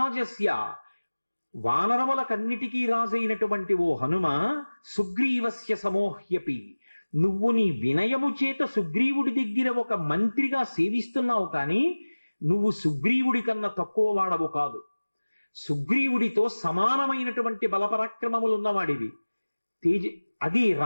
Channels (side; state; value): both; inverted; correlation -1.00